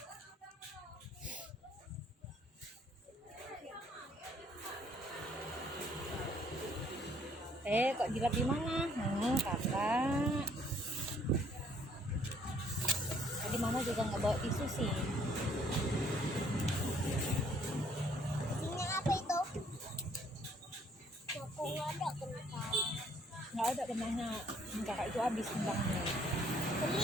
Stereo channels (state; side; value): normal; both; correlation 0.63